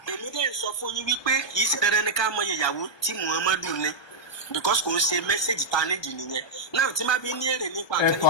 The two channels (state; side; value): late; right; 1.2 ms